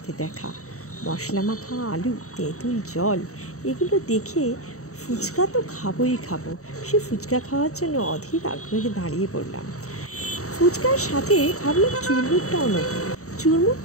দেখা। মশলা মাখা আলু, তেঁতুল জল, এগুলো দেখে ফুচকা তো খাবোই খাবো। সে ফুচকা খাওয়ার জন্য অধীর আগ্রহে দাঁড়িয়ে পড়লাম। ফুচকার সাথে ভাবলাম চুরমুরটাও নেব।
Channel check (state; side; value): late; right; 0.65 ms